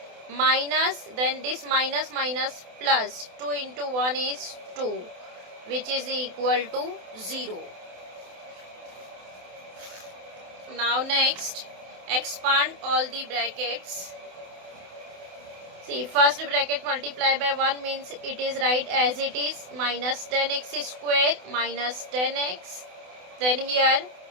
minus, then this minus minus plus 2 into 1 is 2, which is equal to 0. Now next expand all the brackets. See, first bracket multiply by 1 means it is right as it is, minus 10x square minus 10x. Then here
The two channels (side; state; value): left; late; 28 ms